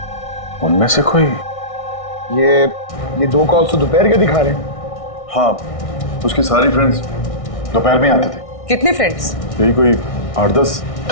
उनमें से कोई? ये 2 कॉल्स तो दोपहर के दिखा रहे हैं। हाँ, उसके सारी फ्रेंड्स दोपहर में आते थे। कितने फ्रेंड्स? यही कोई 8-10।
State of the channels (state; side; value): late; right; 1.6 ms